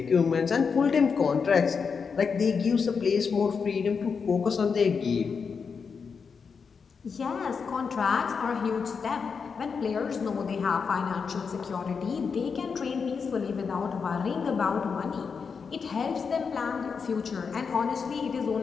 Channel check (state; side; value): quieter; right; 5.7 dB